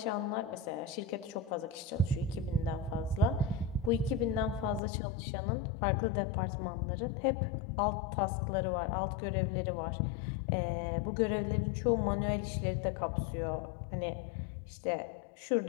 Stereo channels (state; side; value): drops out; right; at 4.8 s